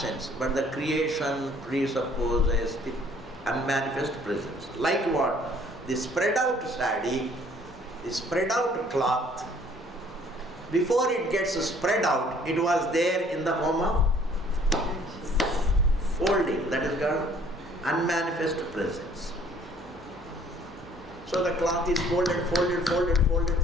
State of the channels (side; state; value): both; normal; correlation 0.58